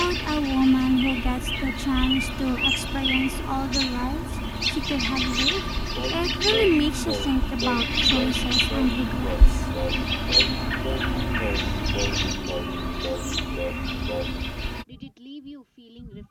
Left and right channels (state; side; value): identical; both; correlation 1.00